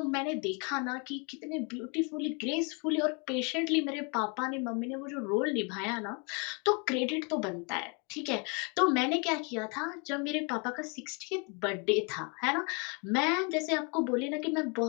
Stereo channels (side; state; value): right; quieter; 34.0 dB